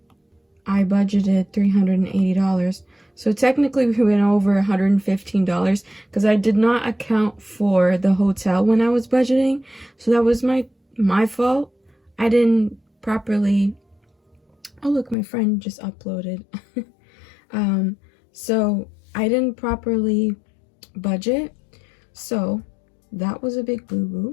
I budgeted $380. So technically we went over $115 because I did not account for the hotel when I was budgeting. So that was my fault. I didn't properly. Oh look, my friend just uploaded. So I didn't properly budget. So that was a big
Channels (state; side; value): drops out; right; at 15.2 s